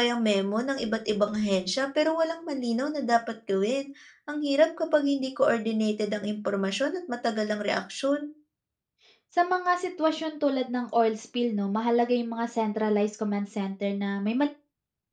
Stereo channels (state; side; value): identical; both; correlation 1.00